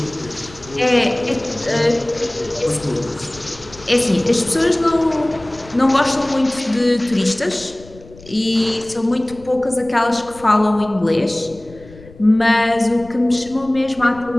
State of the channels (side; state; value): left; noise; rumble, 21 dB below the sound